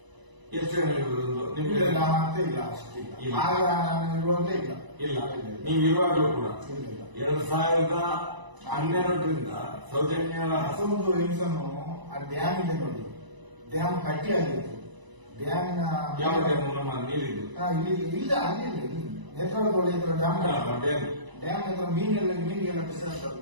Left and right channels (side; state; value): left; late; 1.0 ms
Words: ಎಷ್ಟು ನಿಮಗೆ ಮತ್ತೆ ಇಲ್ಲ, ಅಷ್ಟಿಲ್ಲ. ಆಗ ನಾನು ಇರುವಾಗಲೇ ಇಲ್ಲ. ನೀವು ಇರುವಾಗಲೂ ಕೂಡ 2012ರಿಂದ ಸೌಜನ್ಯ ಹಸೊಂದು ಹೆಂಗಸನ್ನು ಆ ಡ್ಯಾಮ್ ಇದೆ ನೋಡಿ, ಡ್ಯಾಮ್ ಕಟ್ಟಿ ಆಗಿತ್ತು. ಡ್ಯಾಮಿನ ಯಾವ ಡ್ಯಾಮ್? ನಮ್ಮ ನೀರಿದ್ದು ಇಲ್ಲ, ಅಲ್ಲಿ ನೇತ್ರಾವತಿ ಹತ್ರ ಡ್ಯಾಮ್ ಹತ್ರ ಮೀನಿಗೆಲ್ಲ ಬಿಸಾಡ್ತಾರೆ